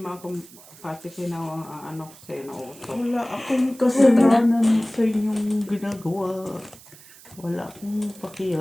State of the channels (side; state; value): right; noise; hiss, 21 dB below the sound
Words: ako, pati ano ko sa'yo na uto. Wala akong kasalanan sa inyong ginagawa. Wala akong